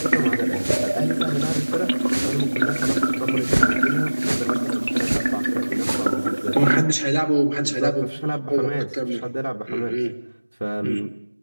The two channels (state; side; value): inverted; both; correlation -1.00